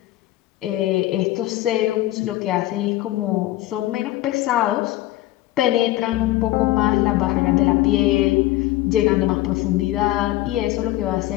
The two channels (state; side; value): quieter; right; 16.2 dB